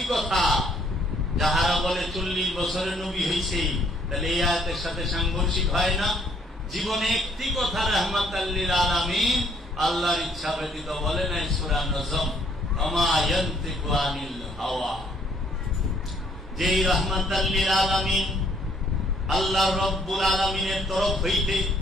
কথা, যাহারা বলে 40 বছরের নবী হয়েছে, তাহলে এই আয়াতের সাথে সাংঘর্ষিক হয় না? জীবনে একটি কথা রাহমাতাল লিল আলামিন আল্লাহর ইচ্ছা ব্যতীত বলে নাই। সূরা নজম মা ইয়ানতিকু আনিল হাওয়া, যেই রাহমাতাল লিল আলামিন আল্লাহ রব্বুল আলামিনের তরফ হইতে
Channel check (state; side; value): normal; both; correlation 0.65